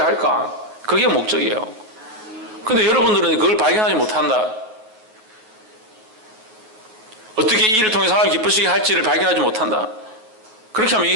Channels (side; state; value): left; late; 9.3 ms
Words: 그게 목적이에요. 근데 여러분들은 그걸 발견하지 못한다. 어떻게 이 일을 통해서 하나님을 기쁘시게 할지를 발견하지 못한다. 그렇게 하면